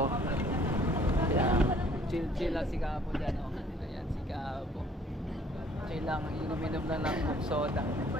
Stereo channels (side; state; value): both; normal; correlation 0.59